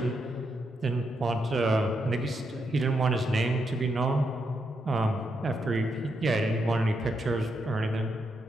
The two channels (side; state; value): both; normal; correlation 0.81